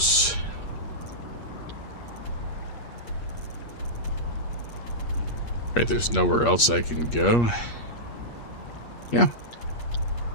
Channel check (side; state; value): right; late; 8.5 ms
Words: Right, there's nowhere else I can go. Yeah.